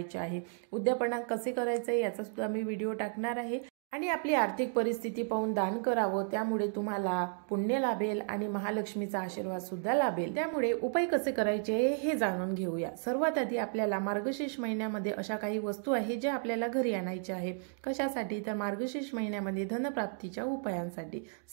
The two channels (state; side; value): silent; left; 56 dB below the other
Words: आहे। उद्यापना कसे करायचे याचा सुद्धा मी व्हिडिओ टाकणार आहे। आणि आपली आर्थिक परिस्थिती पाहून दान करावं, त्यामुळे तुम्हाला पुण्य लाभेल आणि महालक्ष्मीचा आशीर्वाद सुद्धा लाभेल। त्यामुळे उपाय कसे करायचे हे जाणून घेऊया। सर्वात आधी आपल्याला मार्गशीर्ष महिन्यामध्ये अशा काही वस्तू आहेत ज्या आपल्याला घरी आणायच्या आहे। कशासाठी तर मार्गशीर्ष महिन्यामध्ये धनप्राप्तीच्या उपायांसाठी।